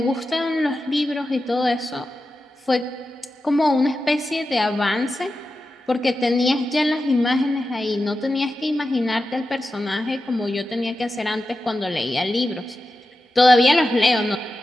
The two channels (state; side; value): normal; both; correlation 0.91